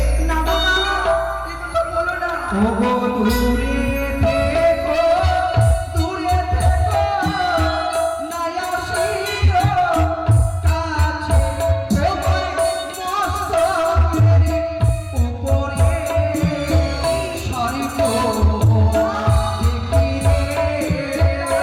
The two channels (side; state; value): both; identical; correlation 1.00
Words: না বাবা এই কথা বলো না। ও গো দূরে